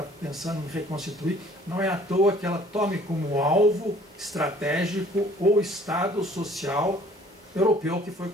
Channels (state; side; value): normal; both; correlation 0.55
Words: pensando em reconstituir. Não é à toa que ela tome como alvo estratégico o Estado social europeu que foi